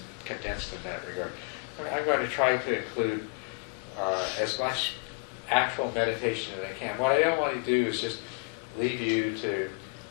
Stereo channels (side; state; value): right; quieter; 35.3 dB